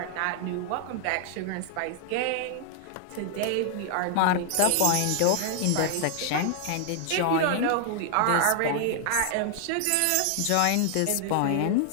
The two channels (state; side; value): different; both; correlation 0.00